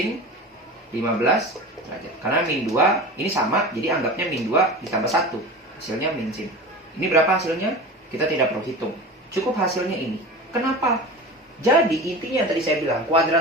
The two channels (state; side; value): normal; both; correlation 0.32